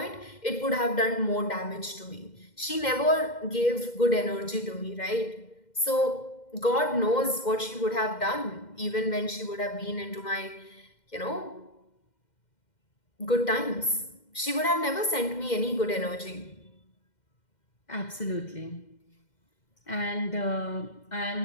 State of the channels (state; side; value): late; right; 2.1 ms